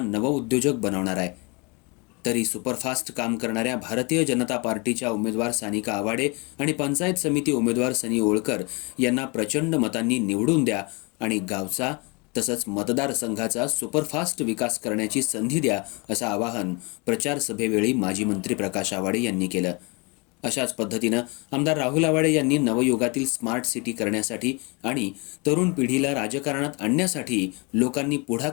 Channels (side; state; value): right; quieter; 29.6 dB